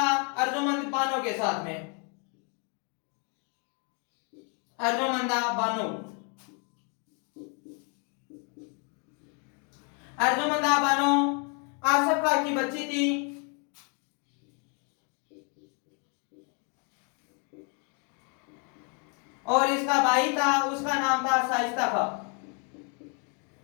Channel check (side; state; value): right; quieter; 37.9 dB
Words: अर्जुमंद बानो के साथ में। अर्जुमंदा बानो। अर्जुमंदा बानो आसफा की बच्ची थी। और इसका भाई था, उसका नाम था शाइस्ता खां।